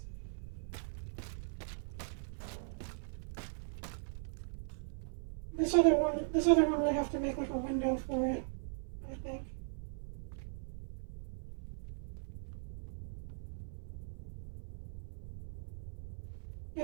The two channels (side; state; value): left; silent; 52 dB below the other